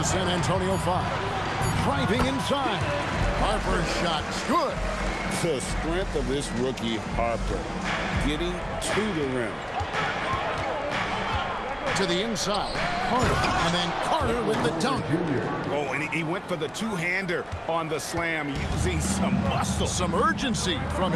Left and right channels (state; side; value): identical; both; correlation 1.00